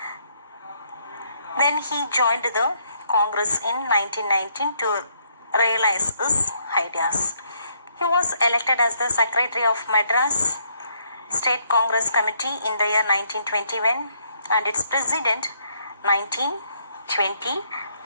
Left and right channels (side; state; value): both; inverted; correlation -0.72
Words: Then he joined the Congress in 1919 to realize his ideas. He was elected as the Secretary of Madras State Congress Committee in the year 1921 and its President